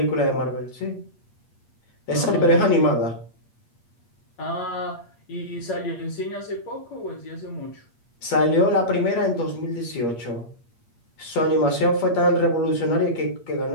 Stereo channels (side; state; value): right; late; 8.5 ms